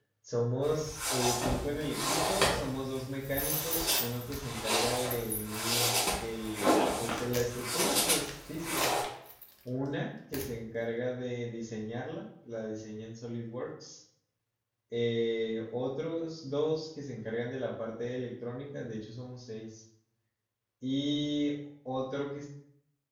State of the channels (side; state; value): both; identical; correlation 1.00